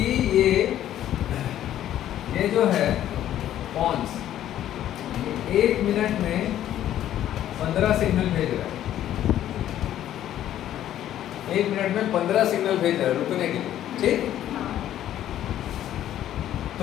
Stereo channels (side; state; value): right; quieter; 11.9 dB